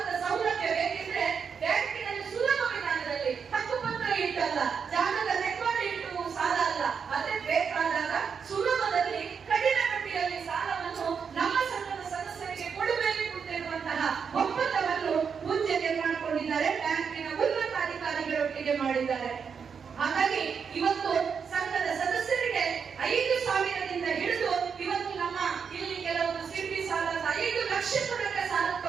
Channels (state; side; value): quieter; left; 6.4 dB